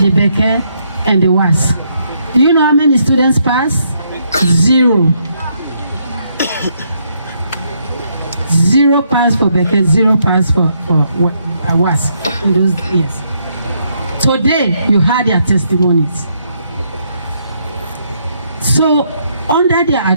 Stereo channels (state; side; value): inverted; both; correlation -0.74